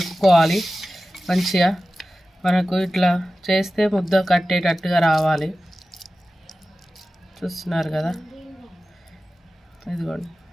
మంచిగా. మనకు ఇట్లా చేస్తే ముద్ద కట్టేటట్టుగా రావాలి. చూస్తున్నారు కదా, ఇదిగోండి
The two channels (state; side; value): normal; both; correlation 0.95